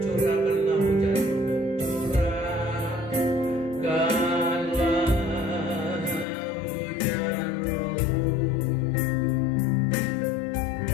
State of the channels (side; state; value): right; drops out; at 6.2 s